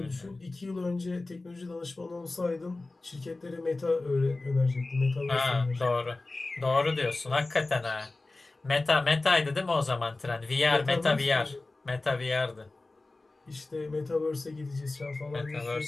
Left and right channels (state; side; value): quieter; right; 3.2 dB